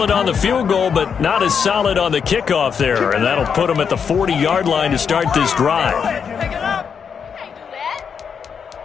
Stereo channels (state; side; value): quieter; right; 6.8 dB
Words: on the field goal, but not as solid on the kickoff there, and that'll put him at the 40-yard line to start this drive.